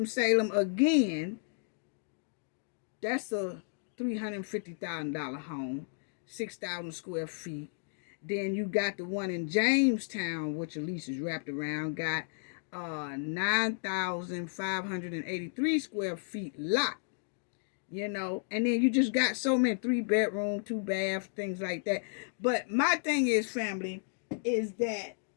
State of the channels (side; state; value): right; silent; digital silence